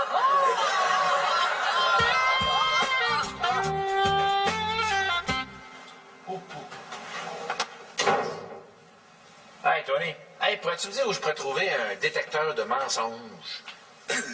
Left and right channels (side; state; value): both; identical; correlation 1.00